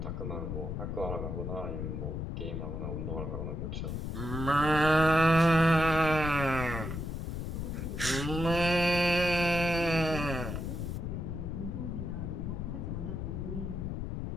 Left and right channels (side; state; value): left; noise; rumble, 4 dB below the sound